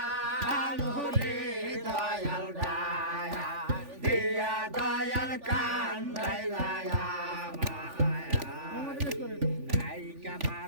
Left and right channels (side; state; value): left; late; 3.5 ms